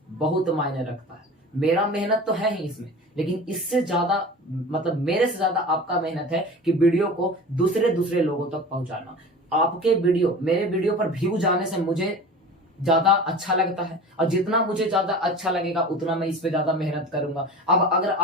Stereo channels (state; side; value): normal; both; correlation 0.35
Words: बहुत मायने रखता है। मेरा मेहनत तो है ही इसमें, लेकिन इससे ज्यादा मतलब मेरे से ज्यादा आपका मेहनत है कि वीडियो को दूसरे लोगों तक पहुंचाना। आपके वीडियो, मेरे वीडियो पर व्यू जाने से मुझे ज्यादा अच्छा लगता है, और जितना मुझे ज्यादा अच्छा लगेगा उतना मैं इस पे ज्यादा मेहनत करूंगा। अब अगर